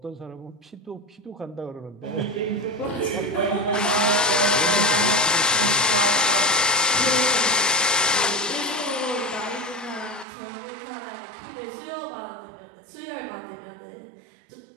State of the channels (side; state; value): left; drops out; at 10.2 s